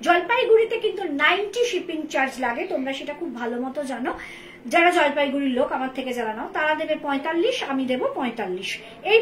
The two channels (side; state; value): both; identical; correlation 1.00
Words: জলপাইগুড়িতে কিন্তু 90 শিপিং চার্জ লাগে, তোমরা সেটা খুব ভালো মতো জানো। যারা জলপাইগুড়ির লোক আমার থেকে যারা নাও তারা দেবে 45, আমি দেবো 45।